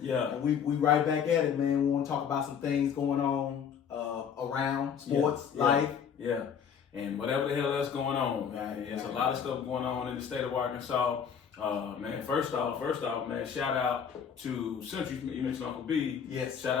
Yeah. And we right back at it, man. We want to talk about some things going on around sports, life. Yeah. And whatever the hell that's going on, man. There's a lot of stuff going on in the state of Arkansas. Man, first off, man, shout out to Central. You mentioned Uncle B. Yes. Shout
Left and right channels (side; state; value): right; quieter; 7.5 dB